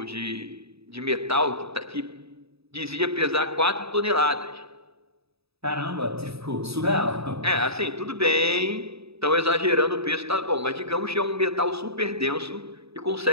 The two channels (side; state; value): left; late; 0.78 ms